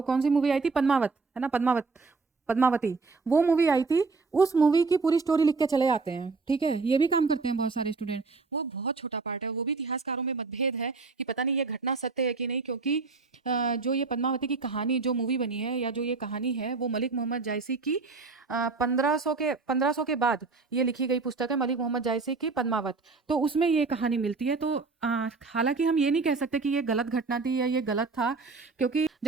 कौन सी मूवी आई थी, पद्मावत, है ना, पद्मावती, वो मूवी आई थी, उस मूवी की पूरी स्टोरी लिख के चले आते हैं। ठीक है, ये भी काम करते हैं बहुत सारे स्टूडेंट। वो बहुत छोटा पार्ट है, वो भी इतिहासकारों में मतभेद है कि पता नहीं ये घटना सत्य है कि नहीं, क्योंकि जो ये पद्मावती की कहानी जो मूवी बनी है या जो ये कहानी है वो मलिक मोहम्मद जायसी की 1500 के बाद ये लिखी गई पुस्तक है, मलिक मोहम्मद जायसी की पद्मावत। तो उसमें ये कहानी मिलती है। तो हालांकि हम ये नहीं कह सकते कि ये गलत घटना थी या ये गलत था, क्योंकि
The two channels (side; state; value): left; quieter; 4.2 dB